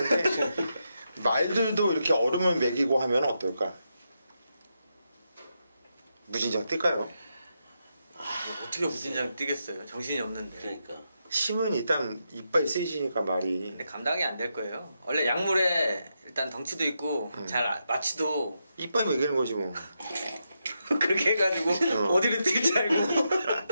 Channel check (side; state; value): both; inverted; correlation -0.84